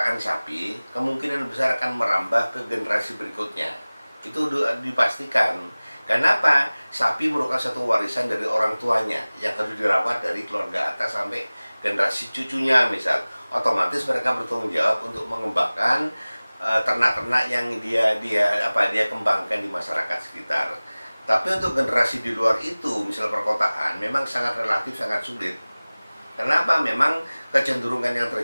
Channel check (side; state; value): both; inverted; correlation -0.99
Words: sapi, kemungkinan besar akan merambah ke generasi berikutnya. Itu dipastikan. Kenapa? Sapi merupakan satu warisan dari orang tuanya yang harus dirawat dari keluarga atas sampai generasi cucunya misal. Otomatis mereka bertanggung jawab untuk mengembangkan ternak-ternak yang dia kembangkan di masyarakat sekitar. Tapi untuk generasi di luar itu, misal perkotaan, memang sangat relatif sangat sulit. Kenapa? Memang kecenderungan yang